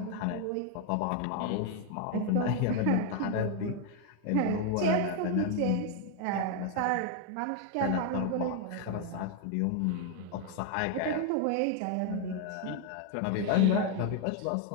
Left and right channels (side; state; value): both; different; correlation 0.00